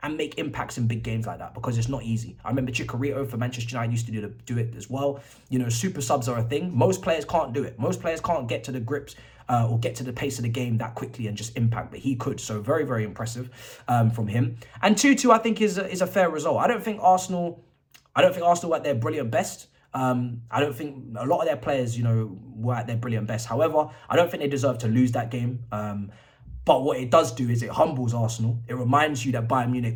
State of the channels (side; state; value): both; identical; correlation 1.00